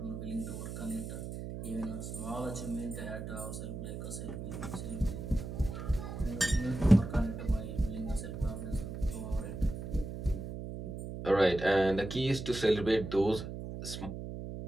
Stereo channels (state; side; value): noise; right; hum, 7 dB below the sound